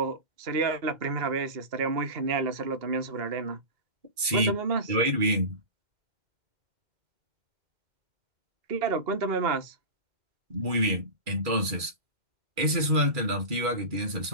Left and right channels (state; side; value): late; left; 2.3 ms